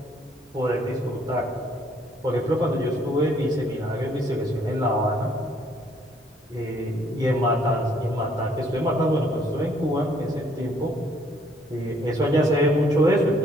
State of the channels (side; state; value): both; normal; correlation 0.65